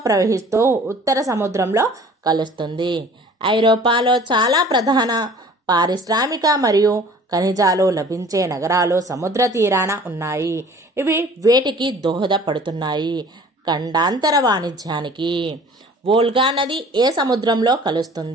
ప్రవహిస్తూ ఉత్తర సముద్రంలో కలుస్తుంది. ఐరోపాలో చాలా ప్రధాన పారిశ్రామిక మరియు ఖనిజాలు లభించే నగరాలు సముద్ర తీరాన ఉన్నాయి. ఇవి వేటికి దోహదపడుతున్నాయి? ఖండాంతర వాణిజ్యానికి. వోల్గా నది ఏ సముద్రంలో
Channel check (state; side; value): normal; both; correlation 0.48